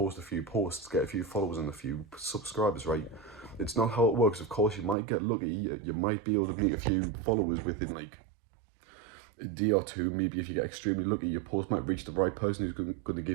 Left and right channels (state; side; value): drops out; left; at 5.0 s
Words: a few posts, get a few followers and a few subscribers, right? It's not how it works. Of course, you might get lucky, you might be able to meet a few followers within like a day or two. Maybe if you get extremely lucky, your post might reach the right person who's going to